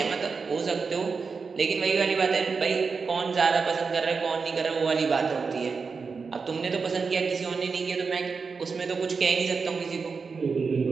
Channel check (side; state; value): left; quieter; 5.0 dB